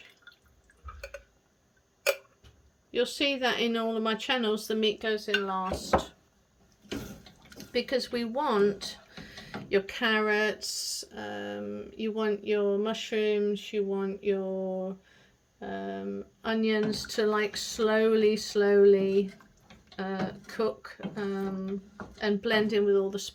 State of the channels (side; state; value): both; identical; correlation 1.00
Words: You'll see that in all of my channels the meat goes in last, because we want your carrots, you want your mushrooms, you want your onions to like slowly cook and blend in with all the